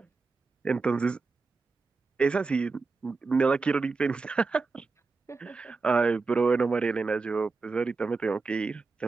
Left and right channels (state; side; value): quieter; left; 4.2 dB